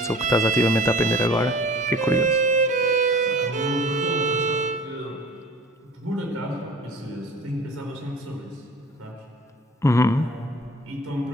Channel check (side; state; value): both; normal; correlation 0.45